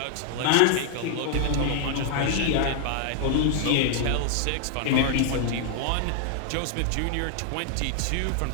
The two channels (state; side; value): different; both; correlation 0.00